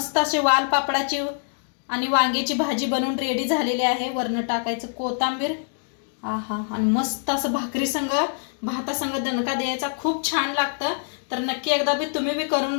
असे वाल पापडाची आणि वांग्याची भाजी बनवून रेडी झालेली आहे. वरनं टाकायचं कोथिंबीर. आहा, आणि मस्त असं भाकरी संग भातासंग दणका द्यायचा, खूप छान लागतं. तर नक्की एकदा बी तुम्ही बी करून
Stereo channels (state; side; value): silent; right; digital silence